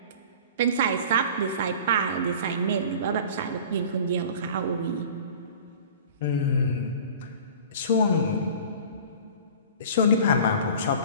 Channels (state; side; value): inverted; both; correlation -0.41